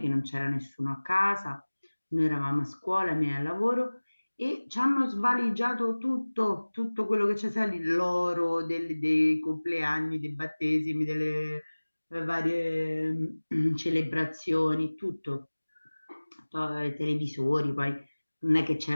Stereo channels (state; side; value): inverted; both; correlation -1.00